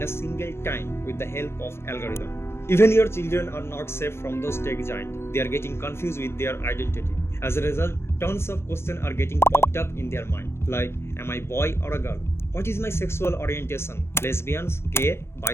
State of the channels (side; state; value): right; late; 0.12 ms